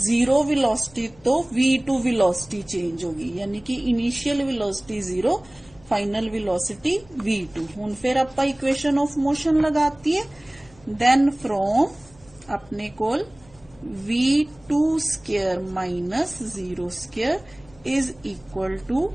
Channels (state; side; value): noise; left; hum, 27 dB below the sound